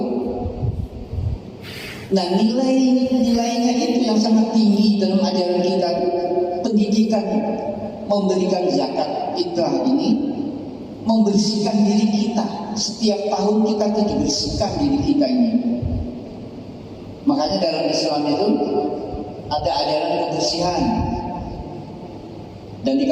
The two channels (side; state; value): both; identical; correlation 1.00